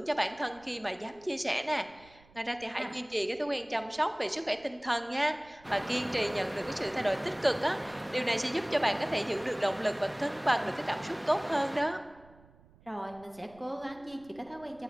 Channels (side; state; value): right; noise; rumble, 26 dB below the sound